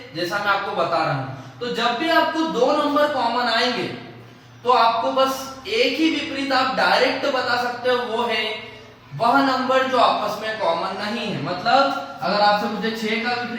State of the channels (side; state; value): both; identical; correlation 1.00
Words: जैसा मैं आपको बता रहा हूं। तो जब भी आपको दो नंबर कॉमन आएंगे तो आपको बस एक ही विपरीत आप डायरेक्ट बता सकते हो, वो है वह नंबर जो आपस में कॉमन नहीं है। मतलब अगर आपसे पूछे 6 का